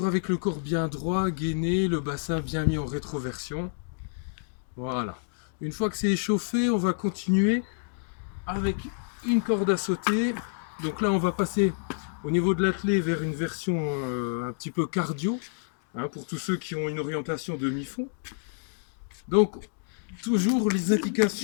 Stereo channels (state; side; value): silent; right; digital silence